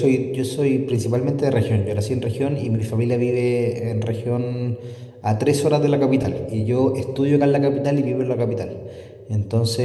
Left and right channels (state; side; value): identical; both; correlation 1.00